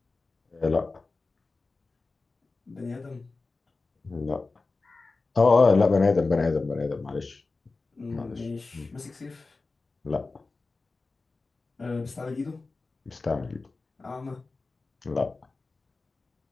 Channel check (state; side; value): quieter; right; 3.8 dB